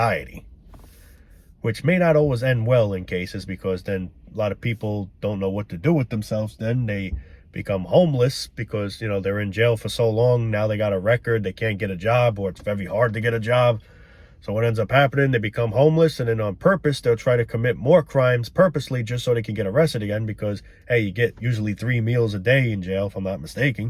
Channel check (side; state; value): both; identical; correlation 1.00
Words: Which may not always end well in cases, because then a lot of people don't know what to do with themselves. Then they become homeless because, you know, they're in jail for so long. Now they got a record. They can't get a job, or it's very hard to get a job. So what ends up happening, they become homeless, and then on purpose, they'll try to commit more crimes purposely just so they can get arrested again because, hey, you get usually 3 meals a day in jail, if I'm not